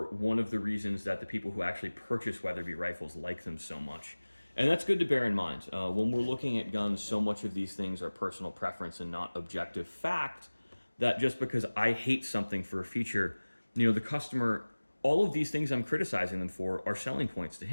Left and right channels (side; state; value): both; inverted; correlation -1.00